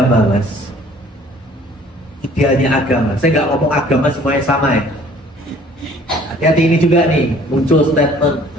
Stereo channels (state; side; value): normal; both; correlation 0.54